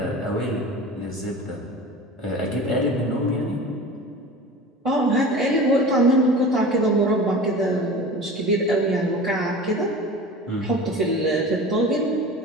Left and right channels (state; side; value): normal; both; correlation 0.36